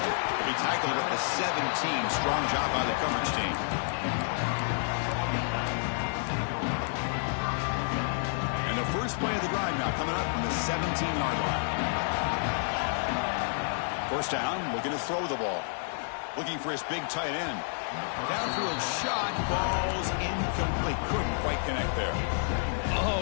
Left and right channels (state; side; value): silent; right; digital silence